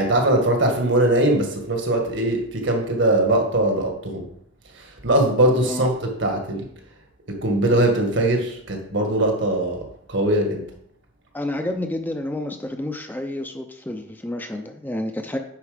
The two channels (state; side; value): normal; both; correlation 0.10